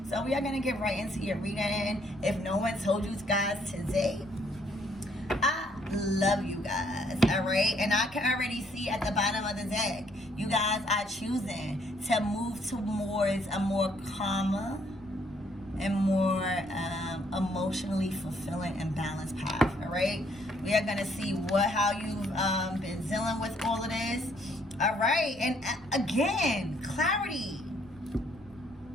So we are going to get right into your reading. If no one told you guys today, I love you guys, all right? And I can already see at the bottom of the deck, you guys are choosing to move towards a more calmer and more emotionally fulfilling and balanced path, all right? We are going to see how you've been dealing with all of this, all right? And again, clarity.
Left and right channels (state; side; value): noise; right; rumble, 23 dB below the sound